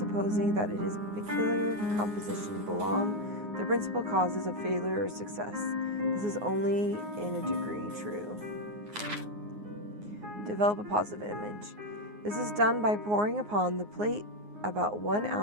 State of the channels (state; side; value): late; left; 9.6 ms